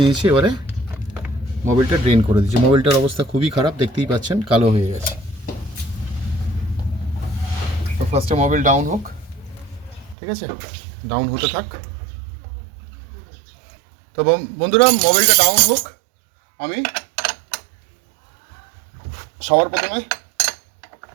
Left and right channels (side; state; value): left; drops out; at 10.2 s